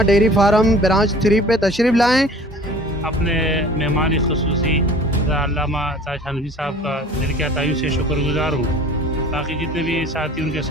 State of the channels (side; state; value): both; normal; correlation 0.47